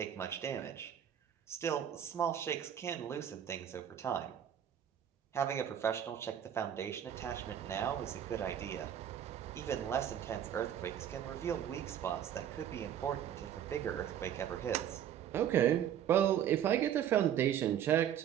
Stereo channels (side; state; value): left; quieter; 9.9 dB